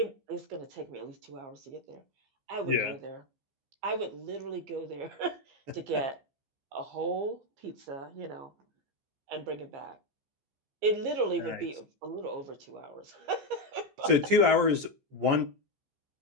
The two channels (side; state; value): left; late; 14 ms